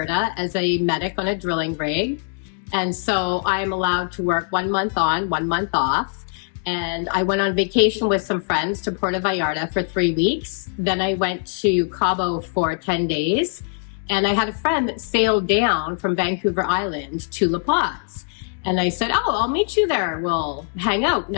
as a medic on a drilling rig. And so I'm allowed to work 1 month on, 1 month off. And I went on vacation with some friends to Puerto Vallarta for 3 weeks. Then I went to Cabo for 10 days. And I had a friend that sailed down from Vancouver Island to La Paz. And I said, oh, I'll meet you there. We'll hang out.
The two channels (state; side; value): silent; right; 61 dB below the other